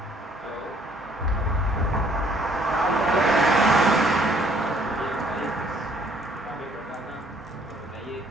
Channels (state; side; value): normal; both; correlation 0.62